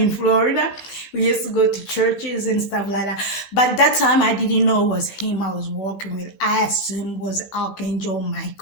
Florida. We used to go to churches and stuff like that. But that time I didn't know it was him I was walking with. I assumed it was Archangel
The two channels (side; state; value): right; late; 15 ms